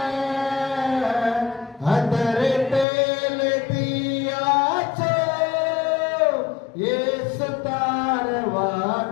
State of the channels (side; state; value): right; drops out; at 2.9 s